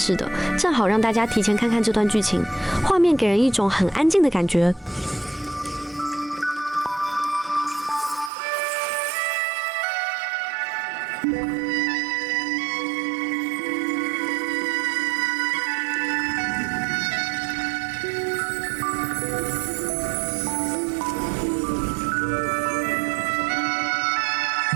的，正好让大家提前看看这段剧情。画面给人一种很安静的感觉。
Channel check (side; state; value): left; drops out; at 8.3 s